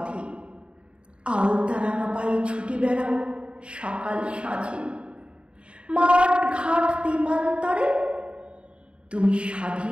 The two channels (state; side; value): late; left; 0.057 ms